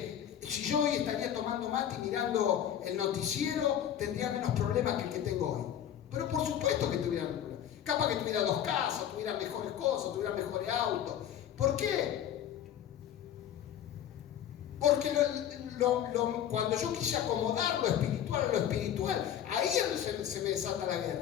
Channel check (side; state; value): right; quieter; 10.2 dB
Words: si yo hoy estaría tomando mate y mirando el noticiero, tendría menos problemas que el que tengo hoy. Pero por supuesto que tuviera problemas. Capaz que tuviera 2 casas, tuviera mejores cosas, tuviera mejores autos. ¿Por qué? Porque cuando yo quise acomodar lo espiritual a lo espiritual, ahí es donde se me desata la